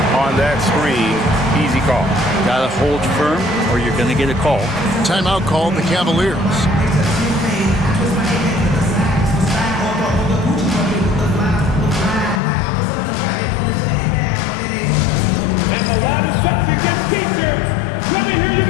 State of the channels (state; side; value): drops out; right; at 12.4 s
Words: on that screen. Easy call. Got to hold firm or you're going to get a call. Timeout called the Cavaliers. Let me hear you